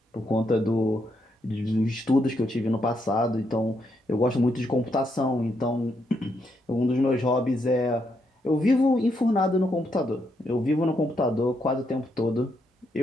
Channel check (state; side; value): normal; both; correlation 0.78